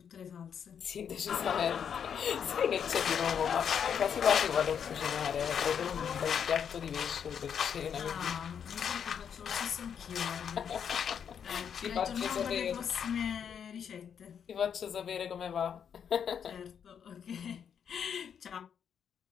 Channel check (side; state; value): right; quieter; 7.8 dB